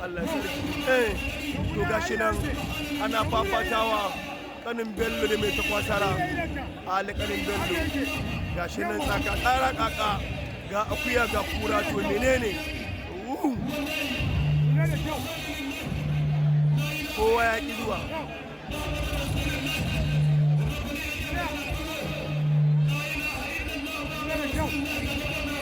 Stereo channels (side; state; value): both; identical; correlation 1.00